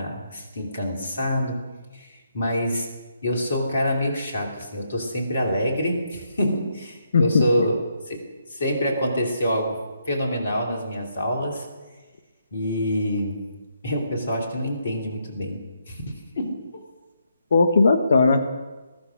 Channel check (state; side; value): inverted; both; correlation -0.77